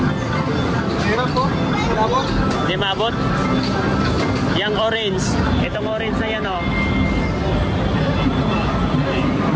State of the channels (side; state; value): both; identical; correlation 1.00